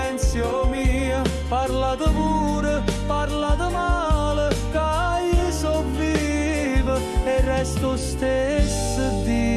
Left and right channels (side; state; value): both; identical; correlation 1.00